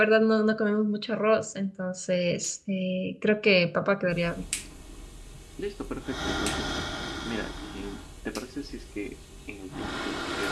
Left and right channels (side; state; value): both; identical; correlation 1.00